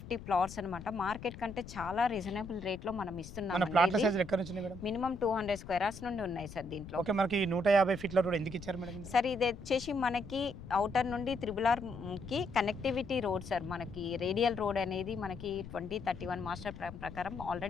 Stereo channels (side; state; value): left; noise; rumble, 13 dB below the sound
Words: ప్లాట్స్ అనమాట. మార్కెట్ కంటే చాలా రీజనబుల్ రేట్లో మనం మన ఇస్తున్నాం. ప్లాట్ల సైజులు ఎక్కడ నుంచి మేడం? మినిమం 200 స్క్వేర్ యార్డ్స్ నుండి ఉన్నాయి సార్ దీంట్లో. ఓకే, మనకి 150 ఫీట్ల రోడ్ ఎందుకు ఇచ్చారు మేడం? సార్ ఇది వచ్చేసి మనకి అవుటర్ నుండి త్రిబుల్ ఆర్కి కనెక్టివిటీ రోడ్ సార్. మనకి రేడియల్ రోడ్ అనేది మనకి 2031 మాస్టర్ ప్రకారం